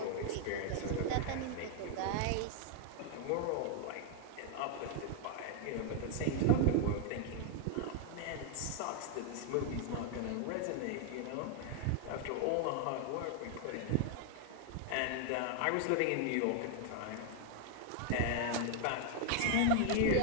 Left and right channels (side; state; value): both; different; correlation 0.00